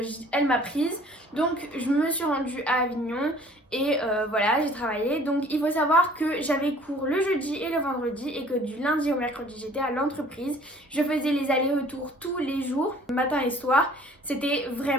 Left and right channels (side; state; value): both; normal; correlation 0.53